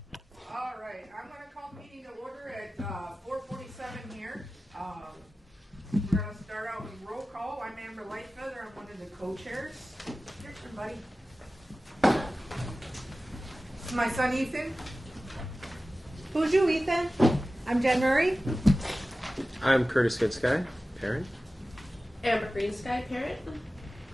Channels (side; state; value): both; normal; correlation 0.96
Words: right, I'm going to call the meeting to order at 4:47 here. We're going to start out with roll call. I'm Amber Lightfeather. I'm one of the co-chairs. Here's somebody. This is my son Ethan. Who's you, Ethan? I'm Jen Murray. I'm Curtis Goodsky, parent. Amber Greensky, parent.